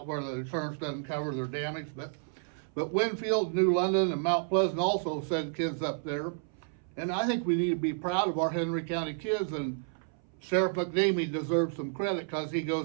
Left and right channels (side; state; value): left; silent; 57 dB below the other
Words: where the insurance doesn't cover their damage. But Winfield, New London, and Mount Pleasant also send kids up there. And I think we need to be proud of our Henry County kids, and Sheriff McNamee deserves some credit because he